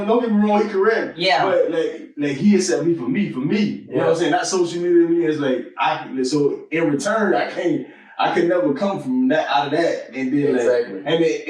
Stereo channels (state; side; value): identical; both; correlation 1.00